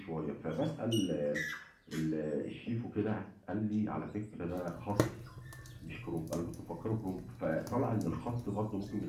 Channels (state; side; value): identical; both; correlation 1.00